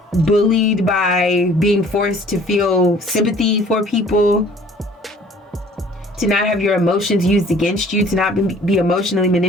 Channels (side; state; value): both; normal; correlation 0.53